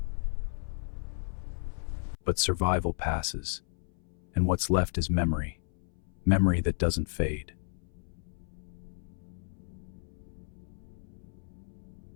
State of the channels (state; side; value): silent; right; 56 dB below the other